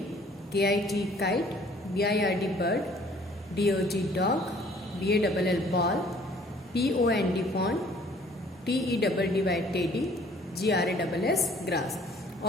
K-I-T, kite, B-I-R-D, bird, D-O-G, dog, B-A-L-L, ball, P-O-N-D, pond, T-E-D-D-Y, teddy, G-R-A-S-S, grass.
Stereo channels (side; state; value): both; normal; correlation 0.56